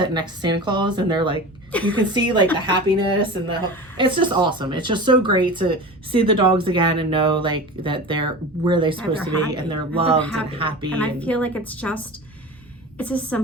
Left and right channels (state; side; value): normal; both; correlation 0.32